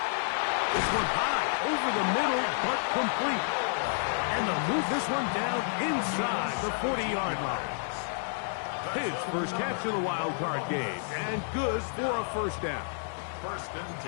This one high, over the middle, but complete. And they'll move this one down inside the 40-yard line. His first catch of the wild card game, and good for a first down. First and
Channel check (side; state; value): right; silent; 58 dB below the other